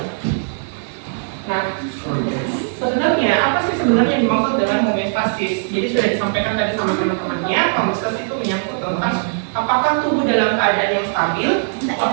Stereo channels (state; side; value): silent; left; digital silence